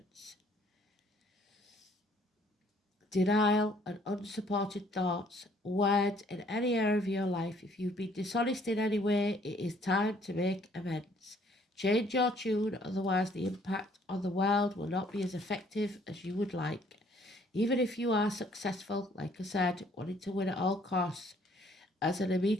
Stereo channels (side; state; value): both; normal; correlation 0.62